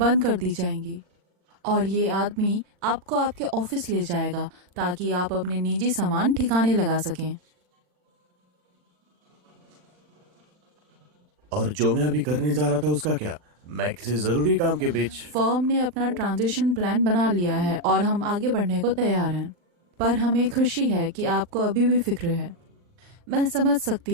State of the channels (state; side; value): late; left; 39 ms